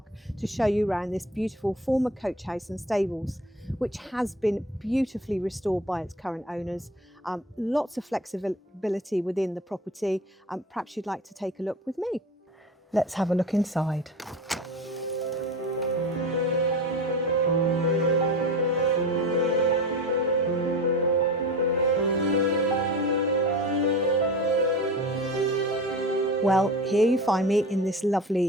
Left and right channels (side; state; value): both; normal; correlation 0.33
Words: to show you around this beautiful former coach house and stables, which has been beautifully restored by its current owners. Lots of flexibility within the property. Perhaps you'd like to take a look with me. Let's have a look inside. Well, here you find me in this